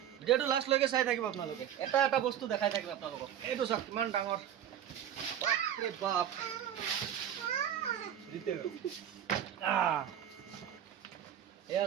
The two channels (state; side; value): quieter; left; 10.2 dB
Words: ভিডিঅ'টো লাষ্টলৈকে চাই থাকিব আপোনালোকে। এটা এটা বস্তু দেখাই থাকিব আপোনালোকক। এইটো চাওক কিমান ডাঙৰ, বাপৰে বাপ। এয়া